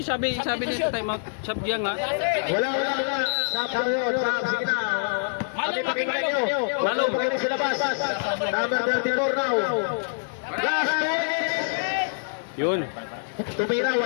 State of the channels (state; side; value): silent; right; digital silence